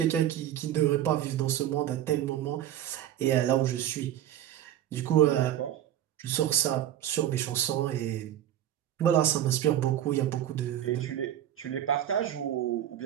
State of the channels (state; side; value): quieter; left; 11.6 dB